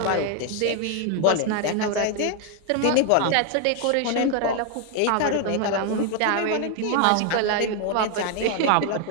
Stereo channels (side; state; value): both; different; correlation 0.01